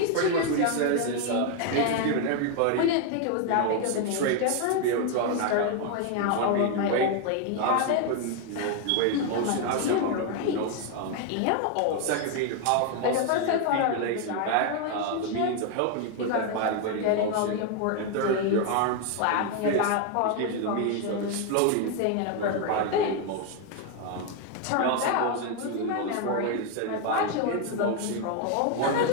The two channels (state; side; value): different; both; correlation 0.01